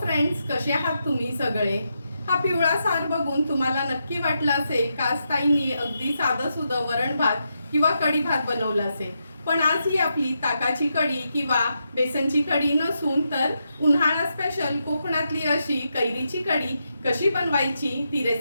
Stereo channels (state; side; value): inverted; both; correlation -0.84